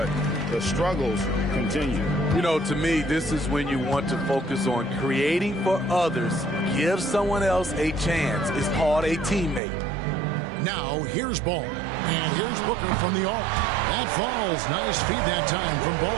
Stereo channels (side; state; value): left; drops out; at 9.6 s